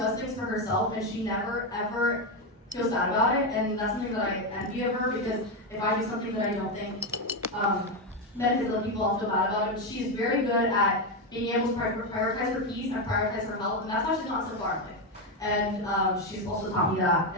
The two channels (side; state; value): both; normal; correlation 0.09